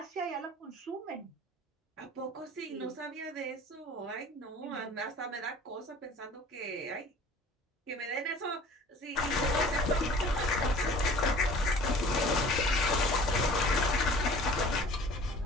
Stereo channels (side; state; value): both; normal; correlation 0.47